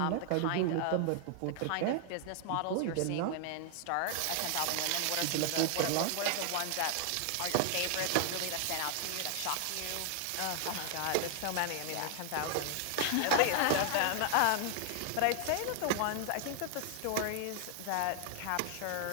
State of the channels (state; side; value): different; both; correlation 0.00